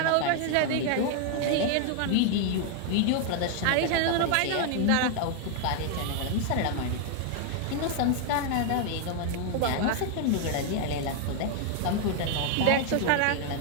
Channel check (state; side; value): different; both; correlation 0.00